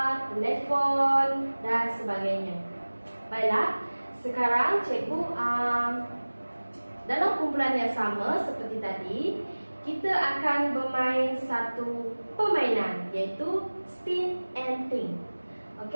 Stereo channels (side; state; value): both; inverted; correlation -1.00